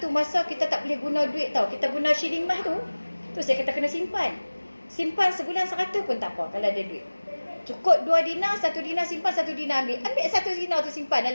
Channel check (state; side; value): inverted; both; correlation -1.00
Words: masa kita tak boleh guna duit tau. Kita guna shilling emas tu. Tu saya kata kena simpan. Simpan sebulan 100 pun tak apa kalau ada duit. Cukup 2 dinar, 1 dinar simpan, 1 dinar ambil. Ambil 1 dinar tu simpan